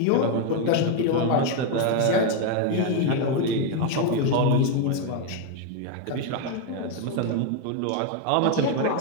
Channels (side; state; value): both; different; correlation 0.01